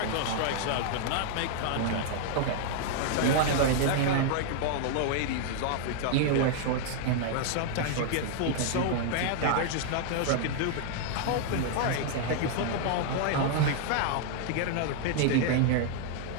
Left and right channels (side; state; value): both; different; correlation 0.00